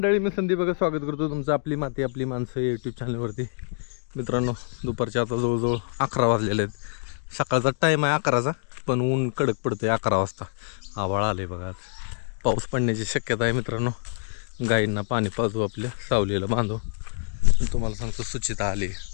मी संदीप बघा स्वागत करतो तुमचं आपली माती आपली माणसं यूट्यूब चॅनलवरती. मित्रांनो, दुपारचे आता जवळजवळ 11 वाजलेले आहेत. सकाळचा टाईम आहे 11चा, पण ऊन कडक पडतं आहे 11 वाजता. आभाळ आले बघा, आज पाऊस पडण्याची शक्यता आहे. मित्रांनो, गाईंना पाणी पाजू, आपल्या सावलीला बांधू. तुम्हाला सांगतो सुचिता आली.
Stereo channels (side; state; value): right; silent; digital silence